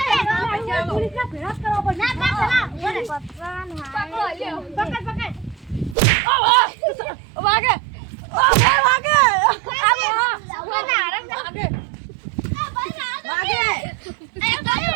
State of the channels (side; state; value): left; drops out; at 6.0 s